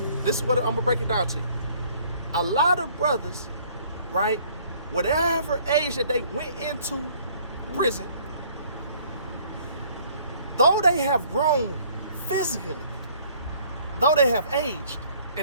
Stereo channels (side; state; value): both; inverted; correlation -0.58